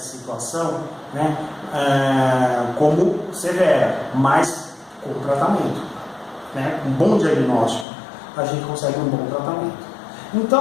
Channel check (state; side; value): drops out; right; at 7.9 s